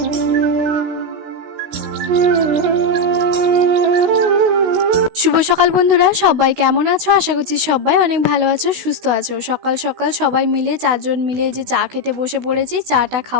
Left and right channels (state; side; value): late; left; 16 ms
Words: সকাল বন্ধুরা, সবাই কেমন আছো? আশা করছি সবাই অনেক ভালো আছো, সুস্থ আছো। সকাল সকাল সবাই মিলে 4 জন মিলে যে চা খেতে বসে পড়েছি। চাটা